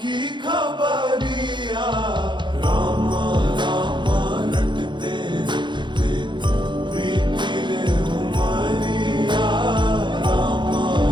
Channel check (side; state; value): left; late; 0.23 ms